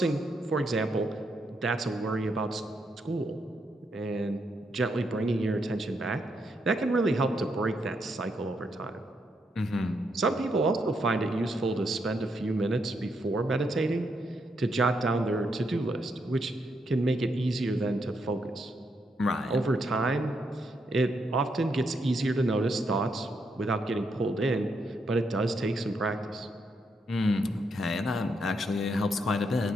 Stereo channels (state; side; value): normal; both; correlation 0.79